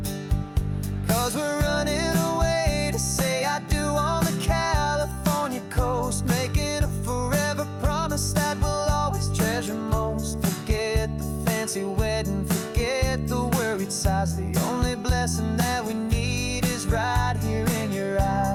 'Cause we're running away to say I do on the California coast, making a forever promise that we'll always treasure most. Forget the fancy wedding, forget the worried sighs. The only blessing that we need is right here in your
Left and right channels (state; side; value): identical; both; correlation 1.00